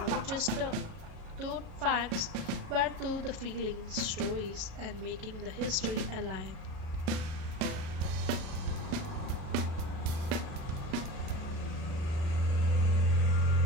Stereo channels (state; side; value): late; left; 38 ms